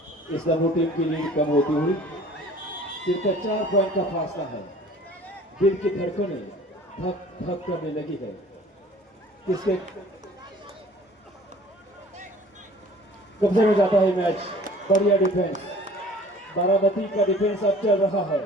इस्लामपुर टीम की लीड कम होती हुई सिर्फ 4 पॉइंट का फासला है. दिल की धड़कनें धक धक करने लगी है. किसके कब्जे में जाता है मैच. बढ़िया डिफेंस, बारामती का डिफेंस अब चल रहा है.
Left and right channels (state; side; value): normal; both; correlation 0.50